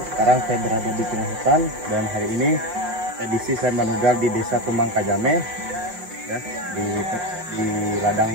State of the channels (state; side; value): late; left; 5.6 ms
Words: sekarang saya berada di tengah hutan dan hari ini edisi saya manugal di Desa Tumbang Kajame ya, di ladang